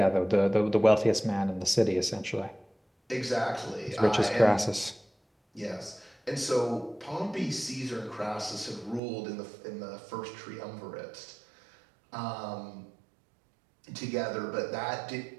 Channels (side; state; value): left; drops out; at 9.0 s